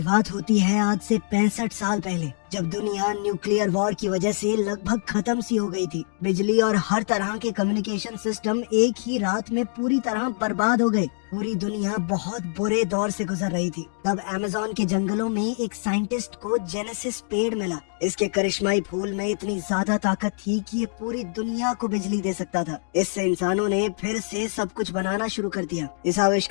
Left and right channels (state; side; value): silent; right; digital silence